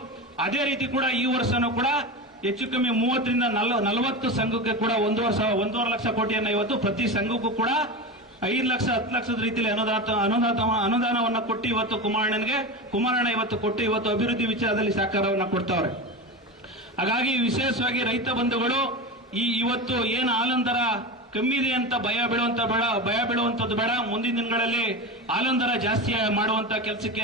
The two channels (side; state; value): both; normal; correlation 0.23